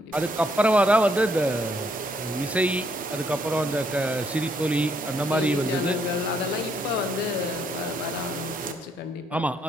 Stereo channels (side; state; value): both; normal; correlation 0.71